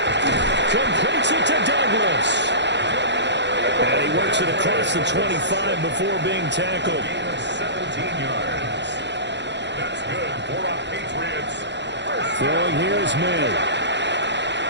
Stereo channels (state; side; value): late; left; 0.52 ms